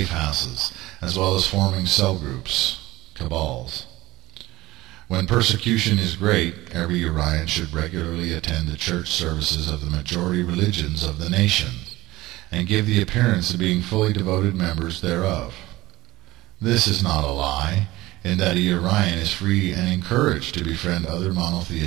houses, as well as forming cell groups, cabals. When persecution is great, every Urian should regularly attend the church services of the majority religions of the nation, and give the appearance of being fully devoted members thereof. This is not a lie, in that a Urian is free and encouraged to befriend other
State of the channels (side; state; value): left; quieter; 18.4 dB